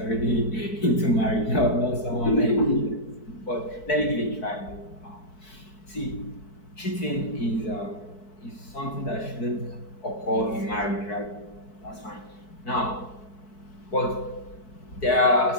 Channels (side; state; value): right; late; 4.6 ms